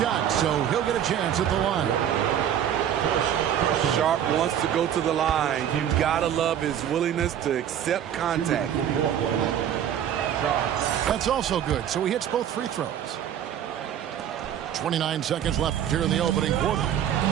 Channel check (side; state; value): left; quieter; 9.9 dB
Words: so he'll get a chance at the line. Sharp wants to go to the line. You've got to love his willingness to accept contact. That's also good, so he hits both free throws. 29 seconds left here in the opening quarter.